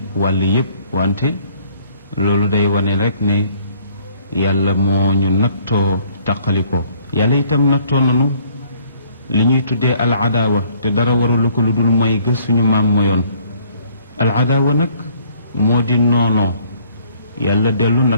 wàll yépp wante loolu day wane rek ne yàlla moo ñu nattoo taqalikoo yàlla itam nattoo nanu li ñuy tuddee al adaawa te dara warulu ko lu dul mooy gës suñu maam moyoon al adaawa nag moo di noonoo yàlla dellu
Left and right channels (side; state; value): both; inverted; correlation -0.60